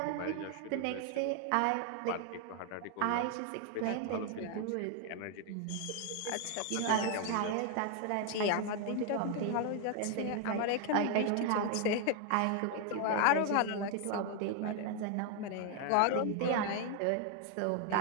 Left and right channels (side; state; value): both; different; correlation 0.00